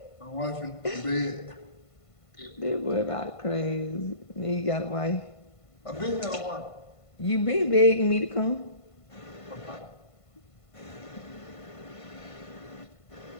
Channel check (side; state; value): right; late; 1.5 ms